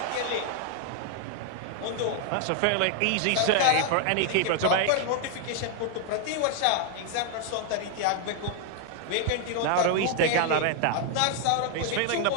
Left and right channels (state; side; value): different; both; correlation 0.00